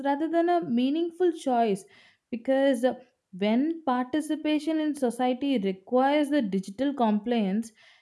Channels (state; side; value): identical; both; correlation 1.00